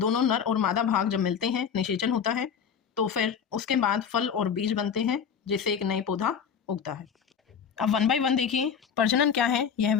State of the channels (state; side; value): quieter; right; 7.2 dB